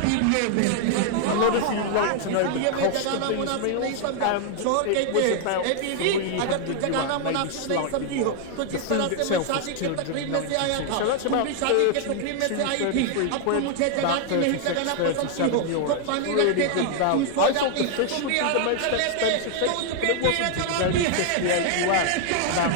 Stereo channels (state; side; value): different; both; correlation 0.00